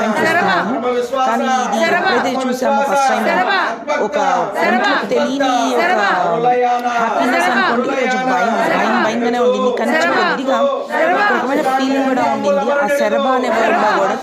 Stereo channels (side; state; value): both; identical; correlation 1.00